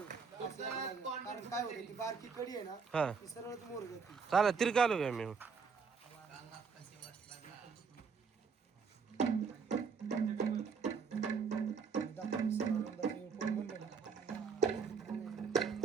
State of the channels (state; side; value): quieter; left; 5.6 dB